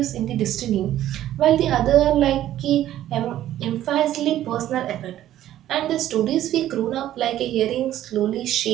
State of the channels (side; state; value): left; quieter; 12.7 dB